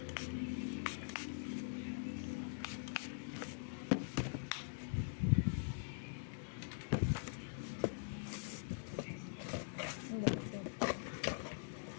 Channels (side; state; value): right; silent; digital silence